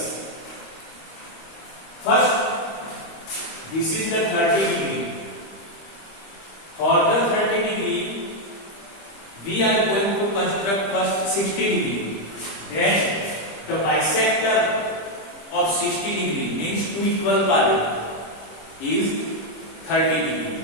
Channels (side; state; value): right; late; 25 ms